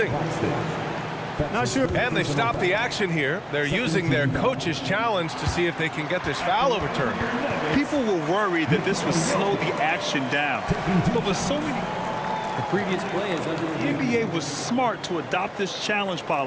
Not sure. And they stopped the action here. They're using their coach's challenge to see if they can get this foul overturned. People were worried that this would slow the action down. But with so many... The previous play is under the NBA was smart to adopt this challenge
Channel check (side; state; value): both; identical; correlation 1.00